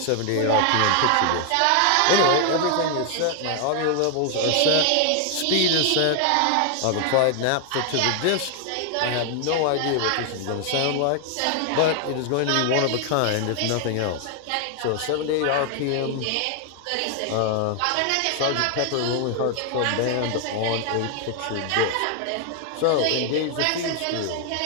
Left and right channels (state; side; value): different; both; correlation 0.00